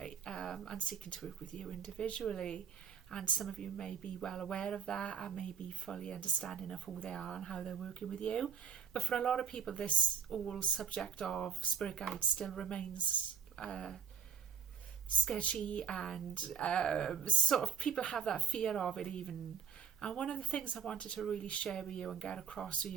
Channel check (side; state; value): left; quieter; 7.2 dB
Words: And seeking to work with you individually. And some of you may be well aware of that and may be fully understanding of who they are and how they're working with you. But for a lot of people, this whole subject of spirit guides still remains sketchy, and sort of people have that fear of it even. And one of the things I wanted to really share with you and get across to